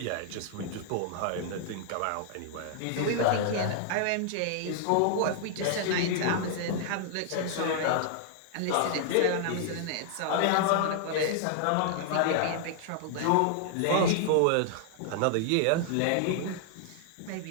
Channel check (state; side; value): different; both; correlation -0.01